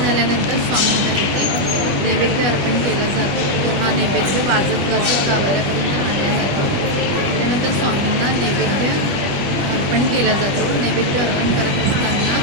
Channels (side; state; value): left; late; 20 ms